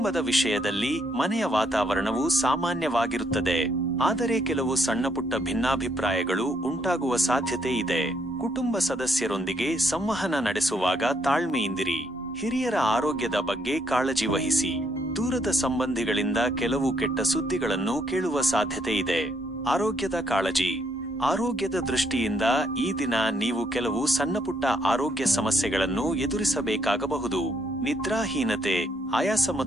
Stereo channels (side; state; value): both; normal; correlation 0.72